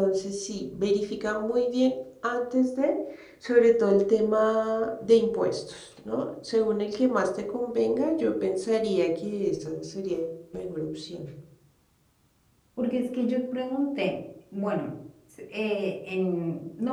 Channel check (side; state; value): both; identical; correlation 1.00